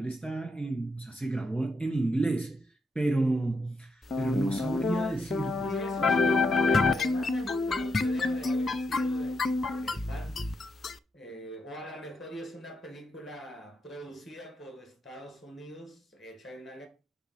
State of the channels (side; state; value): both; normal; correlation 0.81